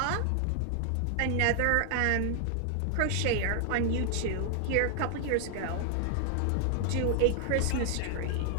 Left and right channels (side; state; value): both; different; correlation 0.00